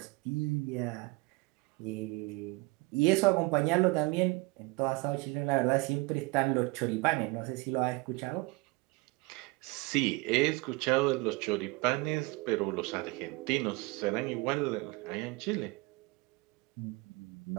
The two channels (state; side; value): quieter; left; 24.7 dB